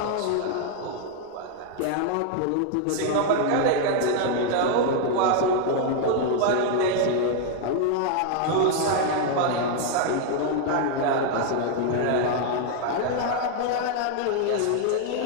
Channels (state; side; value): different; both; correlation 0.00